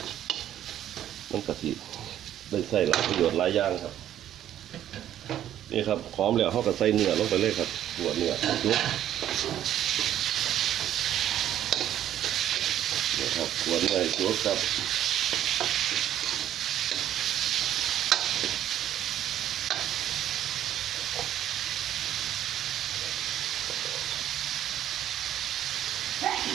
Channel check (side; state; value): left; quieter; 11.4 dB